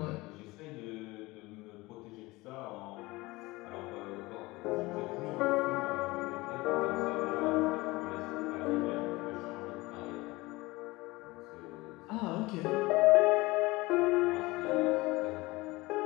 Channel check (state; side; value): quieter; right; 21.5 dB